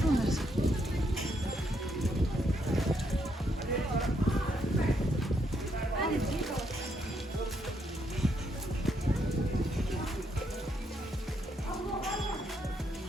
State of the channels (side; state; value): both; normal; correlation 0.76